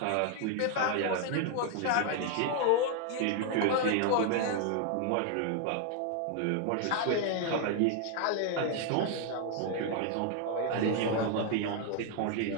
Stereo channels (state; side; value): different; both; correlation 0.00